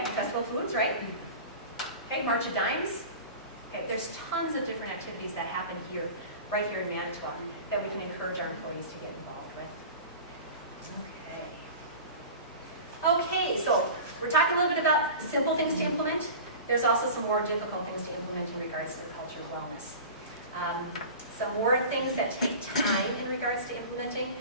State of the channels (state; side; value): inverted; both; correlation -0.36